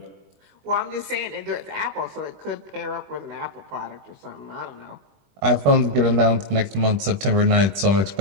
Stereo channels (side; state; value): left; late; 21 ms